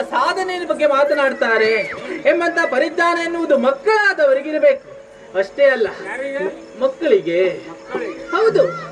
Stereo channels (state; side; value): identical; both; correlation 1.00